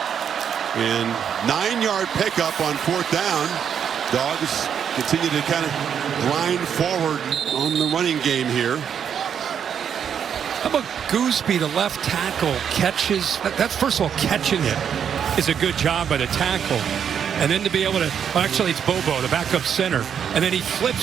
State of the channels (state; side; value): quieter; left; 8.1 dB